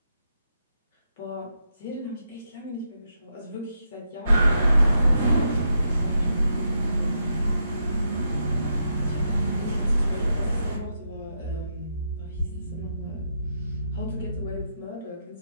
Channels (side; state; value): both; inverted; correlation -0.82